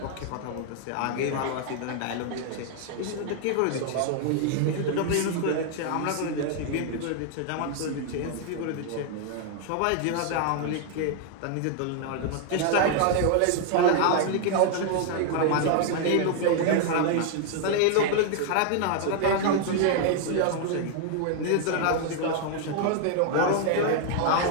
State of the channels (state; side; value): different; both; correlation 0.00